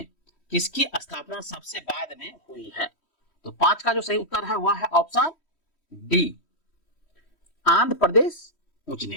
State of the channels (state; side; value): late; right; 3.1 ms